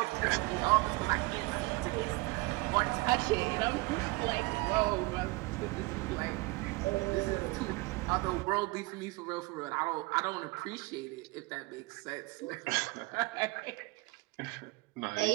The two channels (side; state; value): left; quieter; 23.7 dB